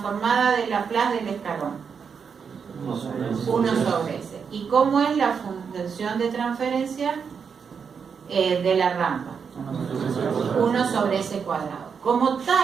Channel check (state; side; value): quieter; left; 6.3 dB